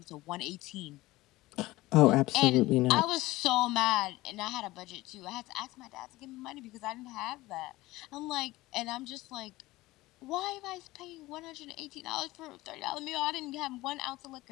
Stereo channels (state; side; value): quieter; right; 18.8 dB